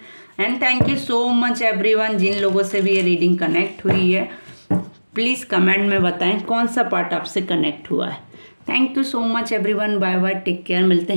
And thank you so much everyone, जिन लोगों से भी ये रीडिंग कनेक्ट हुई है प्लीज़ कमेंट में बताएं कौन सा पार्ट आपसे कनेक्ट हुआ है। Thank you so much everyone, bye bye, take care, मिलते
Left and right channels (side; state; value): both; inverted; correlation -1.00